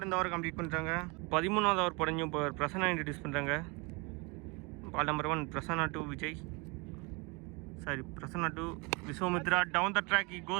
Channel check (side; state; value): left; quieter; 28.9 dB